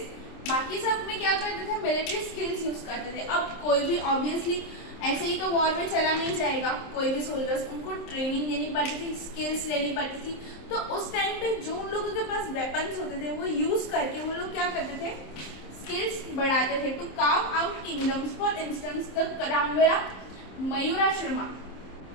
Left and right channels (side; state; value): right; late; 27 ms